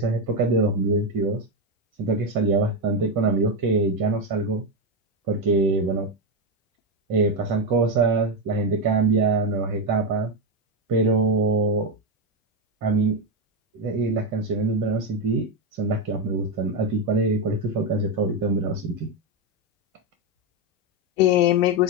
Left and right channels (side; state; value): both; normal; correlation 0.08